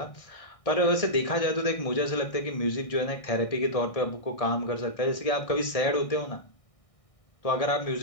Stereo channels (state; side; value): late; right; 1.6 ms